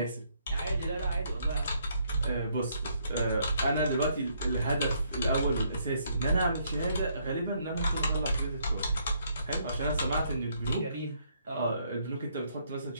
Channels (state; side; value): inverted; both; correlation -0.70